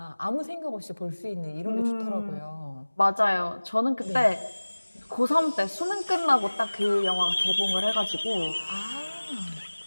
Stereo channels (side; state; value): both; inverted; correlation -1.00